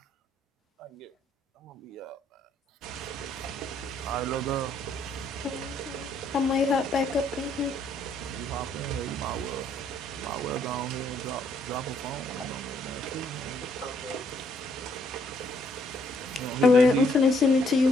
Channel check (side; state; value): both; normal; correlation 0.69